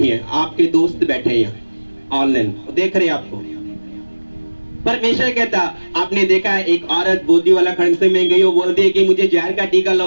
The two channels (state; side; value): inverted; both; correlation -1.00